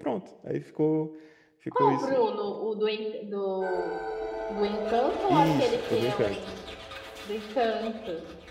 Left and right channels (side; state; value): both; identical; correlation 1.00